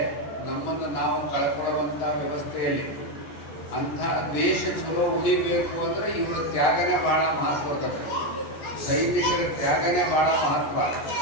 ನಮ್ಮನ್ನು ನಾವು ಕಳ್ಕೊಳ್ಳುವಂಥ ವ್ಯವಸ್ಥೆಯಲ್ಲಿ ಅಂಥ ದೇಶ ಚಲೋ ಉಳಿಬೇಕು ಅಂದ್ರೆ ಇವರ ತ್ಯಾಗನೇ ಬಹಳ ಮಹತ್ವದ ಸೈನಿಕರ ತ್ಯಾಗನೇ ಬಹಳ ಮಹತ್ವ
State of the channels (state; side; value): late; right; 14 ms